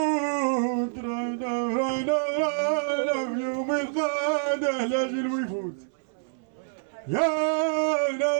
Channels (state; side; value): silent; left; 60 dB below the other